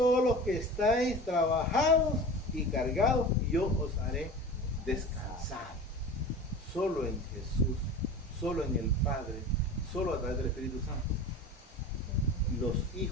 los que estáis trabajados y cargados, y yo os haré descansar. Solo en Jesús, solo en el Padre, solo a través del Espíritu Santo. Los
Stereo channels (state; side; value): normal; both; correlation 0.35